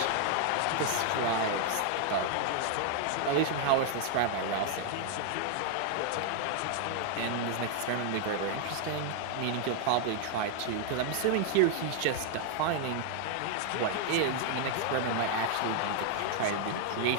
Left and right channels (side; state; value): both; different; correlation 0.00